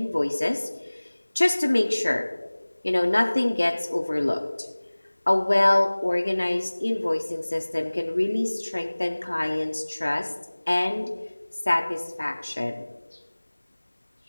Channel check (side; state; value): both; inverted; correlation -1.00